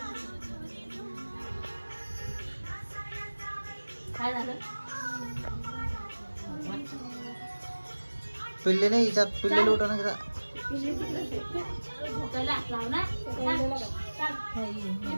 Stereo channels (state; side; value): inverted; both; correlation -1.00